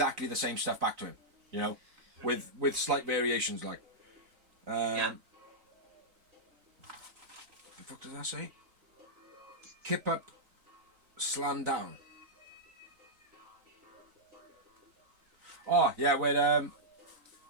the same stuff back to him, you know, with slight variations, like. Yeah. What the fuck does that say? Kip up, slam down. Oh yeah, when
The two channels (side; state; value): left; late; 4.0 ms